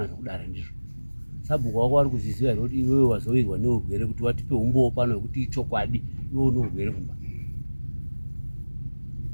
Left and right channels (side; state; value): both; inverted; correlation -1.00